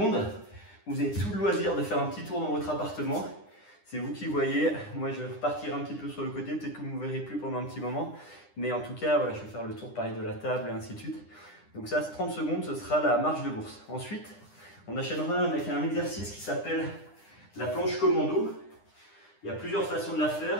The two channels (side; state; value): right; late; 9.9 ms